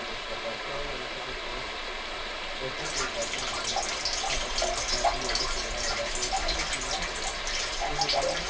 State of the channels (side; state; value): both; identical; correlation 1.00